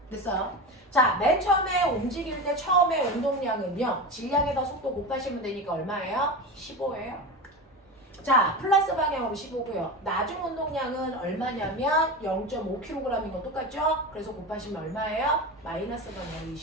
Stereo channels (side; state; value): both; normal; correlation 0.24